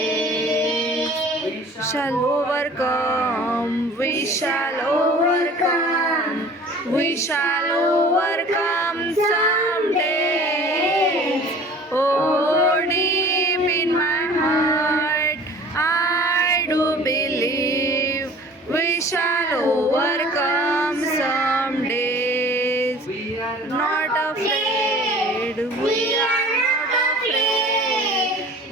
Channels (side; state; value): both; normal; correlation 0.46